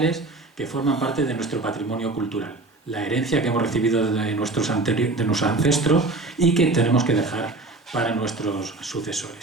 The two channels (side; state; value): left; quieter; 3.1 dB